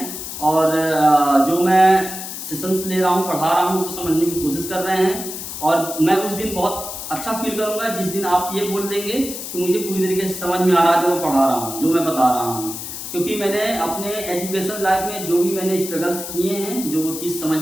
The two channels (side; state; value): left; noise; hiss, 8 dB below the sound